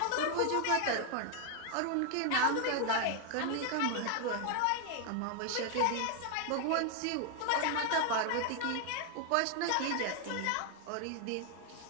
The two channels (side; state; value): both; different; correlation 0.00